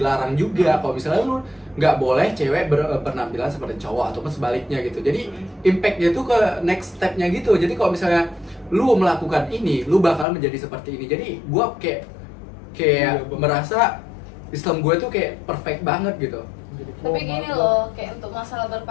juga. Kalau misalnya lu nggak boleh cewek berpenampilan seperti cowok ataupun sebaliknya gitu. Jadi impactnya tuh ke next stepnya gitu. Jadi kalau misalnya lu melakukan ini, lu bakal menjadi seperti ini. Jadi gua kayak merasa Islam gue tuh kayak perfect banget gitu. Tapi gini loh, kayak untuk masalah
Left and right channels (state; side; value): drops out; right; at 10.2 s